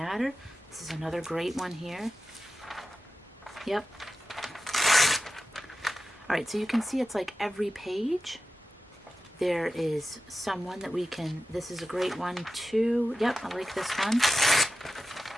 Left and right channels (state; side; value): normal; both; correlation 0.92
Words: This is another great one here. Yep. All right, so you can see it's like every page there is someone that we can, this is a great one too. Yep, I like this one.